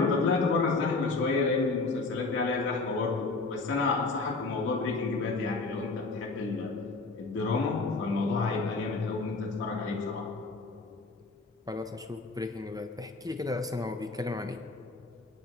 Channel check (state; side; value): quieter; right; 3.7 dB